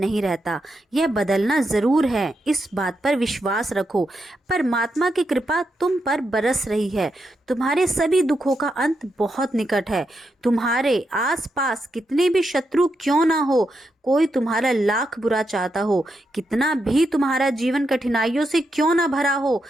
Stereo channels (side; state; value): both; normal; correlation 0.84